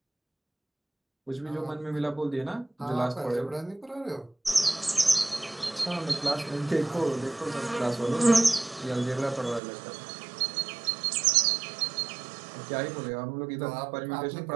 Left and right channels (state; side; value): drops out; left; at 9.6 s